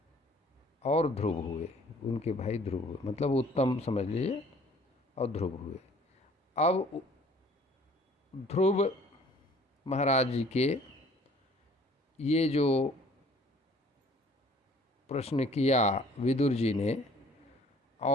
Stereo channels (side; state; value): both; normal; correlation 0.54